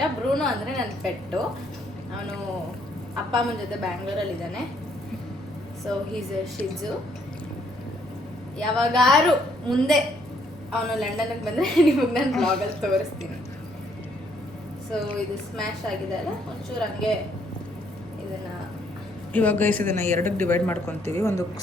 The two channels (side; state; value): both; normal; correlation 0.69